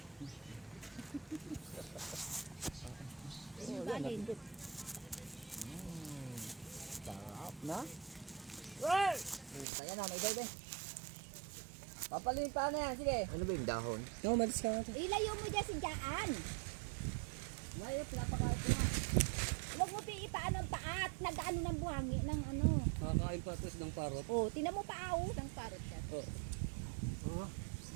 Yung kanin. Sarap na. Well! Kaya na, may baby. Papalitan na yan, sige. Ano ba yung dahon? No, malis ka natin. Ilayo mo dyan si Jaan. Mayop, napakain ko na. Huwag mo piipaan ang paat. Nag-ano ng buhangi ng ano. Nakakain pa ito ng parot. Oh, tinan mo paaw. Ng parot yan. Oo.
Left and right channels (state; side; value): drops out; left; at 9.7 s